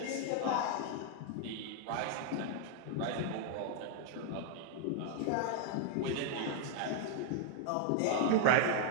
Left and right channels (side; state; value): both; different; correlation -0.01